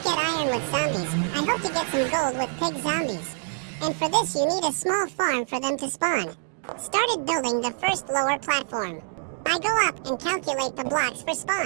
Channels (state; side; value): silent; left; digital silence